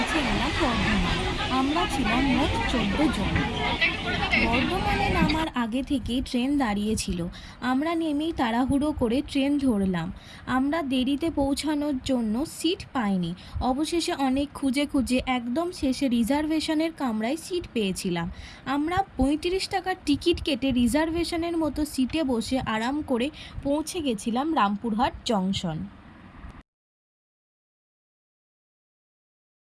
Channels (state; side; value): identical; both; correlation 1.00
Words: গেলাম বর্ধমান। আমরা ছিলাম মোট 14 জন। বর্ধমানে নামার আগে থেকেই ট্রেন দাঁড়িয়েছিল। আমরা নেমেই তাড়াহুড়ো করে ট্রেন ধরলাম। আমরা দেরিতে পৌঁছানোর জন্য সিট পাইনি। অবশেষে অনেক খুঁজে খুঁজে একদম শেষে রিজার্ভেশনের কামরায় সিট পেয়েছিলাম। আমরা 35 টাকার টিকিট কেটে রিজার্ভেশনের মতো সিটে বসে আরাম করে পৌঁছে গেছিলাম রামপুরহাট জংশন।